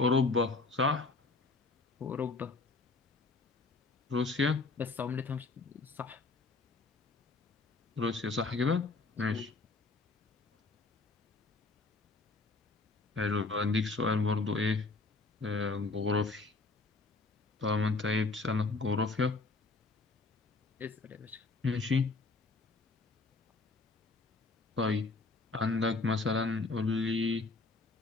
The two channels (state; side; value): quieter; right; 3.7 dB